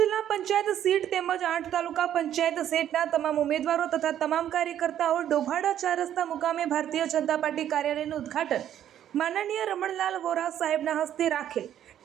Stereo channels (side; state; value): left; quieter; 10.8 dB